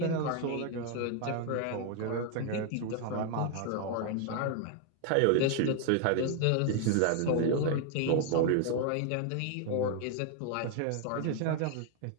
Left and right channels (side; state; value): both; different; correlation 0.00